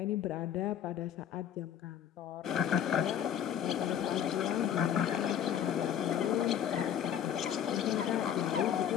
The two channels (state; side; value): quieter; right; 9.5 dB